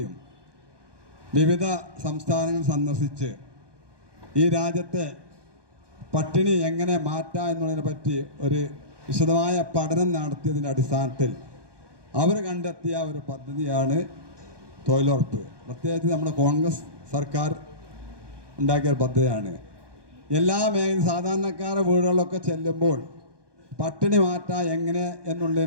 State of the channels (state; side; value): late; left; 1.2 ms